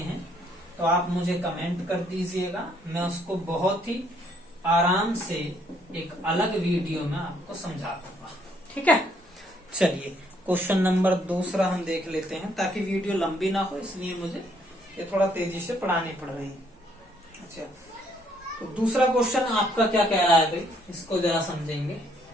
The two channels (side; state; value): both; normal; correlation 0.68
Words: तो आप मुझे कमेंट कर दीजिएगा। मैं उसको बहुत ही आराम से एक अलग वीडियो में आपको समझा दूंगा। ठीक है, चलिए क्वेश्चन नंबर 2 हम देख लेते हैं, ताकि वीडियो लंबी ना हो, इसलिए मुझे ये थोड़ा तेजी से पढ़ानी पड़ रही है। अच्छा, तो दूसरा क्वेश्चन आपका क्या कह रहा है भाई, इसको जरा समझेंगे।